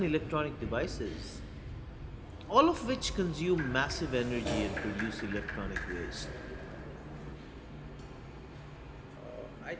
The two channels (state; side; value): identical; both; correlation 1.00